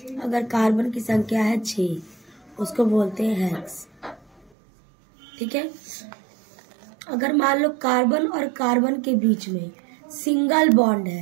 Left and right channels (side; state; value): left; drops out; at 4.5 s